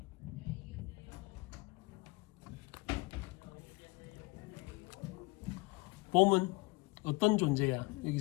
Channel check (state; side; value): quieter; right; 24.7 dB